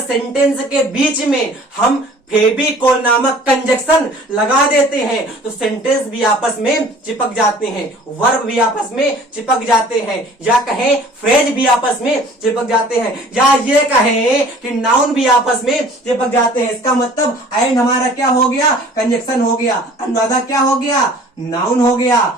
सेंटेंस के बीच में हम फेविकोल नामक कंजक्शन लगा देते हैं तो सेंटेंस भी आपस में चिपक जाते हैं, वर्ब भी आपस में चिपक जाते हैं, या कहें फ्रेज भी आपस में चिपक जाते हैं, या ये कहें कि नाउन भी आपस में चिपक जाते हैं। इसका मतलब एंड हमारा क्या हो गया? कंजक्शन हो गया। अनुराधा क्या हो गया? नाउन हो गया।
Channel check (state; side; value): normal; both; correlation 0.50